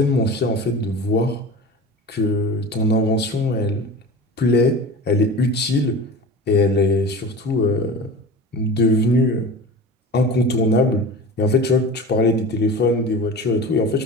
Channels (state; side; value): normal; both; correlation 0.34